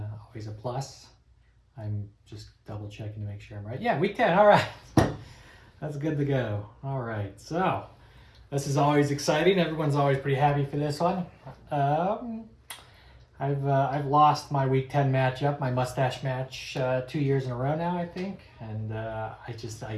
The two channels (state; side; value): identical; both; correlation 1.00